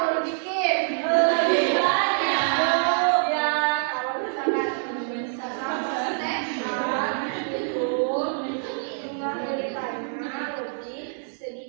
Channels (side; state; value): left; silent; 61 dB below the other